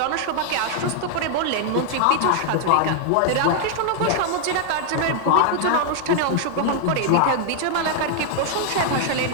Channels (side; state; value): both; different; correlation 0.00